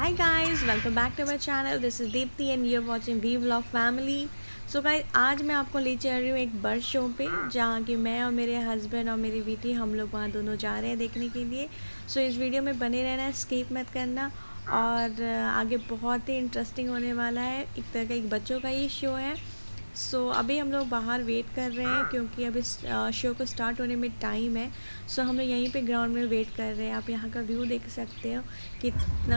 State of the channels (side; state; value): both; inverted; correlation -1.00